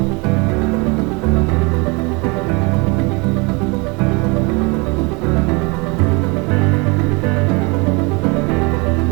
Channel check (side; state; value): left; quieter; 28.5 dB